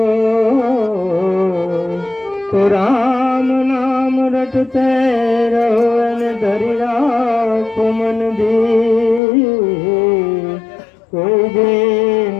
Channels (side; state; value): right; drops out; at 9.2 s